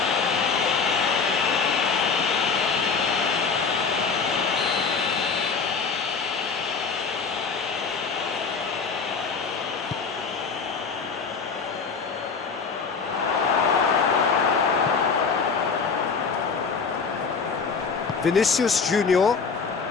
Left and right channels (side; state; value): right; quieter; 5.3 dB